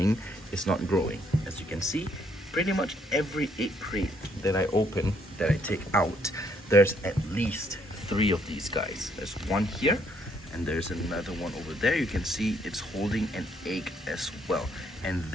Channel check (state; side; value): normal; both; correlation 0.70